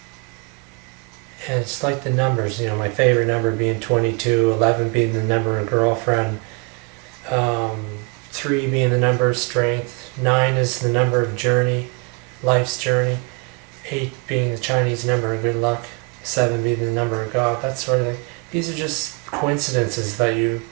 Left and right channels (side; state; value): left; quieter; 31.5 dB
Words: And it's like the numbers, my favorite number being 22, 11 being the number of girlfriend, 3 being the number of strength, 9 is the number of journey, life's journey, 8 being the Chinese number of good luck, 7 being the number of God, that sort of thing. These are just coincidences that